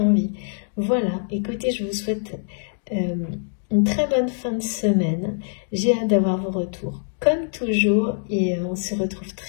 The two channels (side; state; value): right; silent; digital silence